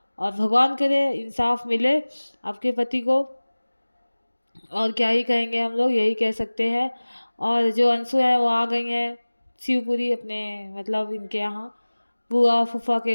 और भगवान करे इंसाफ मिले आपके पति को। और क्या ही कहेंगे, हम लोग यही कह सकते हैं। और जो अंशु है वो आ गई हैं शिवपुरी अपने मतलब इनके यहाँ बुआ फूफा के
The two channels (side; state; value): both; inverted; correlation -1.00